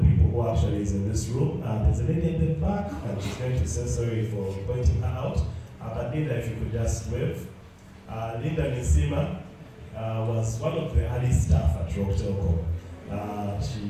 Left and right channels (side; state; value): both; identical; correlation 1.00